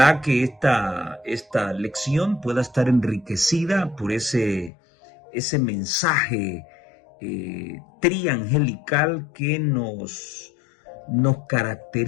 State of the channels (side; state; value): right; drops out; at 4.7 s